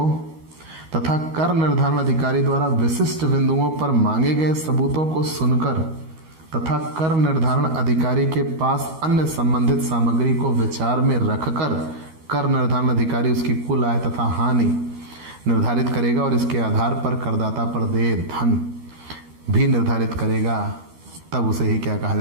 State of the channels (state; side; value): late; left; 13 ms